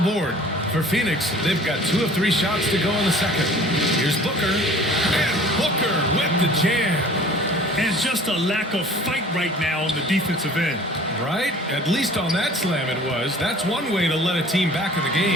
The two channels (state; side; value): normal; both; correlation 0.48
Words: For Phoenix, they've got 2 of 3 shots to go in the second. Here's Booker. And Booker with the jam. And just a lack of fight right now on the defensive end. Right? At least on that slam it was. That's one way to let a team back in the